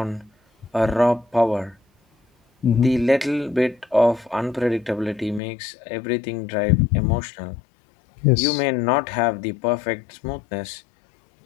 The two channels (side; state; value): right; drops out; at 5.4 s